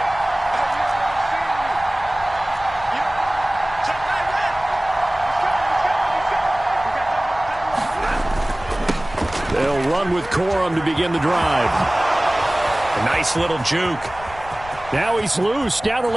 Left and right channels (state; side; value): noise; left; rumble, 17 dB below the sound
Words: They'll run with Corum to begin the drive. A nice little juke. Now he's loose down the